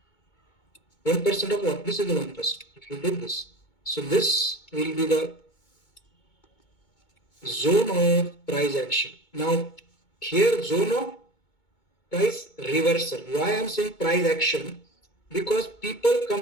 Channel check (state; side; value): late; right; 2.2 ms